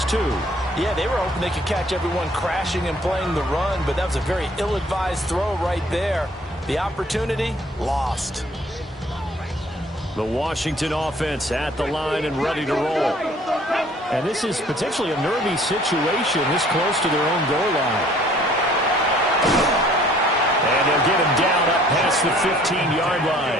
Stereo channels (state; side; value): normal; both; correlation 0.57